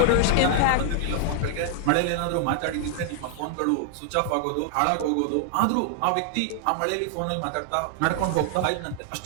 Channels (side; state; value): both; different; correlation 0.00